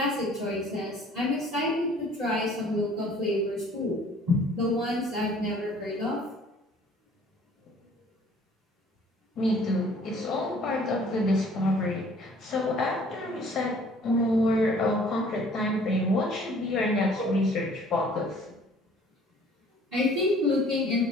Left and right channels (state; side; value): normal; both; correlation 0.54